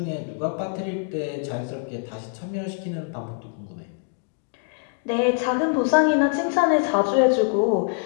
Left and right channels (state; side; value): silent; right; 62 dB below the other